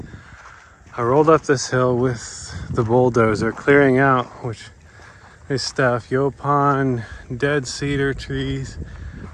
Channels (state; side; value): identical; both; correlation 1.00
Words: I rolled up this hill with the bulldozer, clearing out, which is stuff, Yaupon, dead cedar trees,